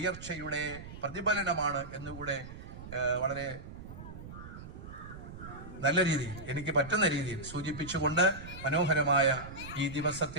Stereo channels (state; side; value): noise; right; rumble, 13 dB below the sound